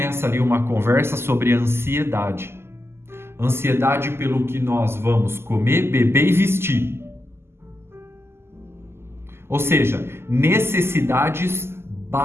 ali uma conversa sobre ansiedade. Ansiedade pelo que nós vamos comer, beber e vestir. Ou seja, necessidades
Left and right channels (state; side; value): late; left; 0.12 ms